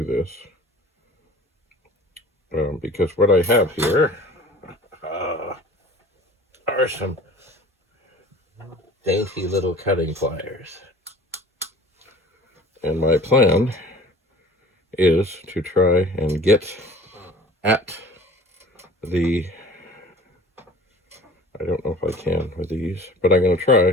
this, because what I have here are some dainty little cutting pliers. And my plan is to try and get at the, I don't know if I can with these, but I'm going to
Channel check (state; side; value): normal; both; correlation 0.45